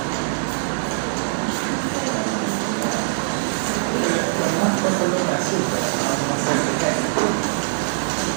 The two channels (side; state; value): left; silent; digital silence